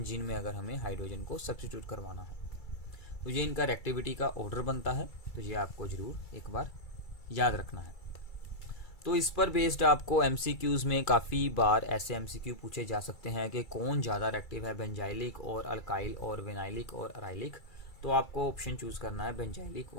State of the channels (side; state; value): right; late; 2.3 ms